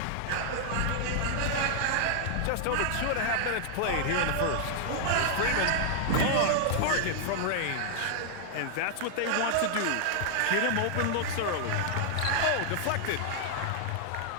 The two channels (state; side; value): different; both; correlation -0.01